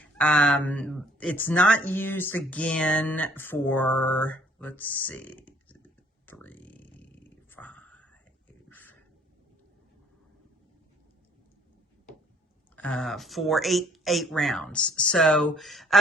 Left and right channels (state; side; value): normal; both; correlation 0.60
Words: It's not used again for, let's see, 3, 5, for eight rounds. So,